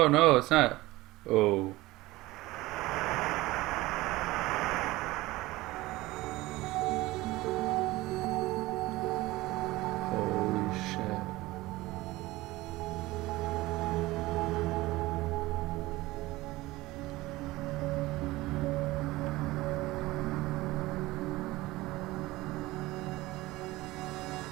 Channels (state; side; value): quieter; left; 19.2 dB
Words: no, it's not. Oh.